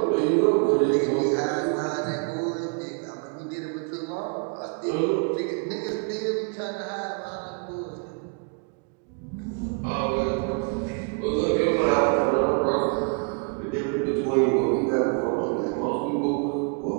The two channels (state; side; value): quieter; left; 36.0 dB